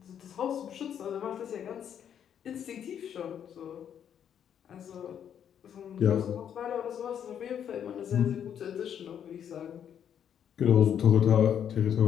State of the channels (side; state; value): right; quieter; 8.9 dB